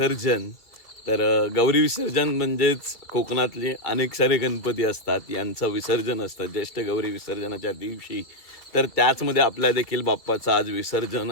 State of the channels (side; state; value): right; late; 2.0 ms